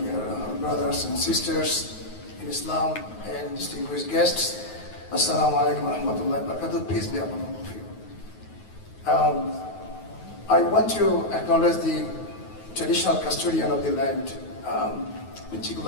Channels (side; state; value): right; late; 9.4 ms